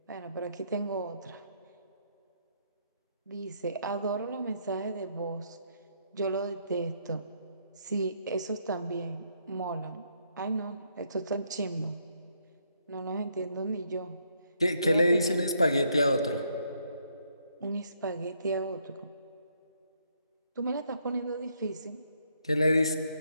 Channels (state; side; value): inverted; both; correlation -0.73